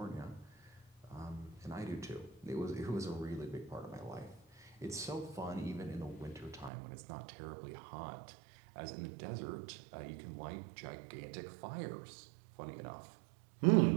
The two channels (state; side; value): drops out; left; at 6.7 s